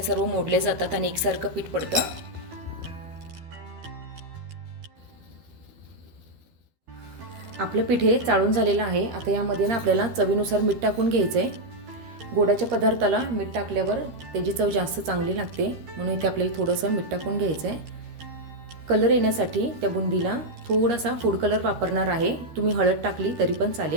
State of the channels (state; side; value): late; left; 12 ms